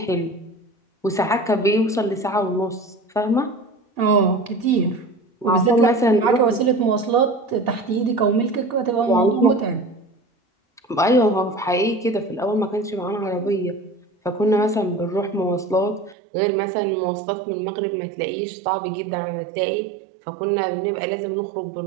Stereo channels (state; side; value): drops out; left; at 16.2 s